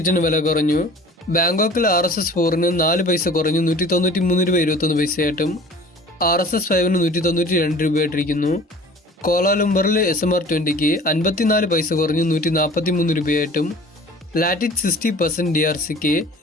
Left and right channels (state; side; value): normal; both; correlation 0.45